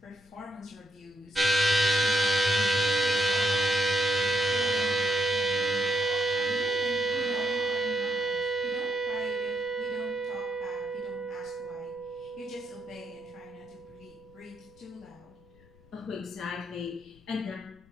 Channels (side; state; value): left; noise; rumble, 28 dB below the sound